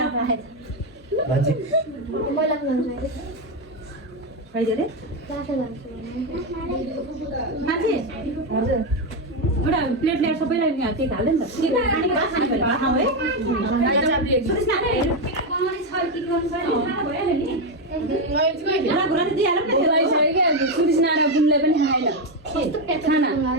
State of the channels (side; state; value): both; normal; correlation 0.07